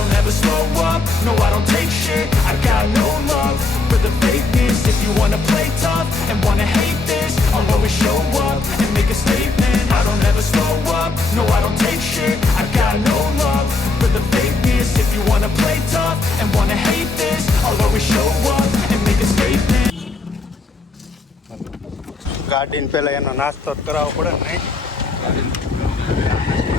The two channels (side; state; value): right; quieter; 3.8 dB